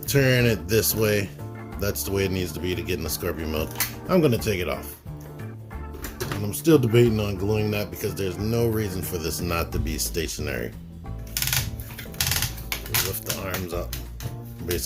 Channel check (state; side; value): identical; both; correlation 1.00